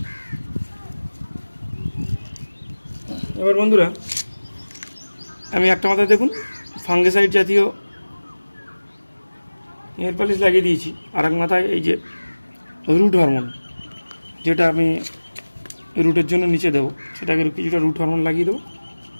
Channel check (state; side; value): inverted; both; correlation -1.00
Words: এবার বন্ধুরা, আমি একটা মাথায় দেখুন ফাঙ্গিসাইড জাতীয় নেল পালিশ লাগিয়ে দিয়েছি, আর এক মাথায় এই যে রুট হরমোন, যেটা আমি রুটের জন্য নিচে দেবো, সেটাকে কিছুটা রুট হরমোন লাগিয়ে দেবো।